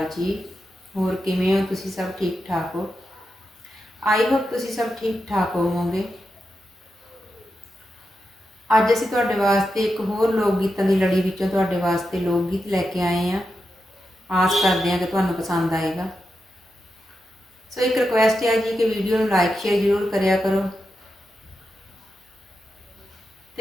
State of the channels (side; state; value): both; normal; correlation 0.88